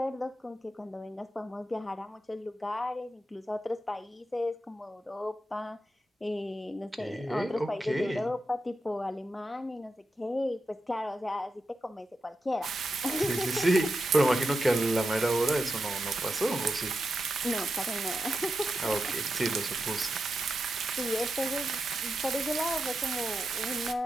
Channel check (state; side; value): normal; both; correlation 0.88